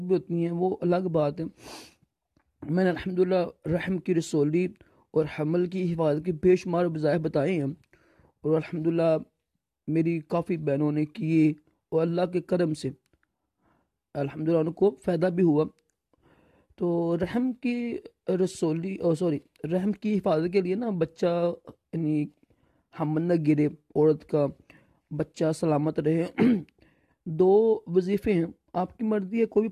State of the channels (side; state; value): both; identical; correlation 1.00